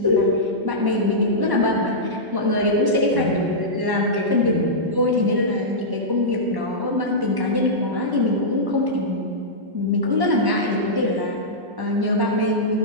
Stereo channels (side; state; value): left; late; 1.1 ms